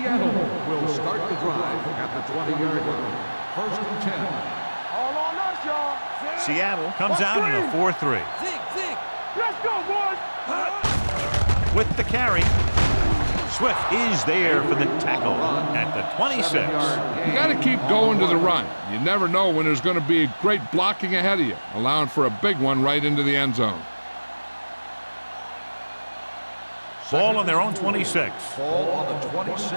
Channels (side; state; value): both; inverted; correlation -1.00